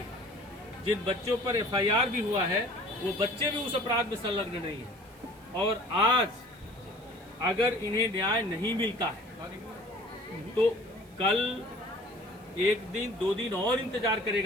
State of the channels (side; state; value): right; noise; hiss, 28 dB below the sound